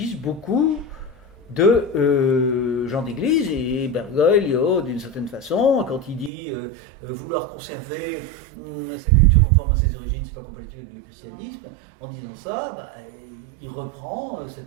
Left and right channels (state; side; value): drops out; left; at 6.3 s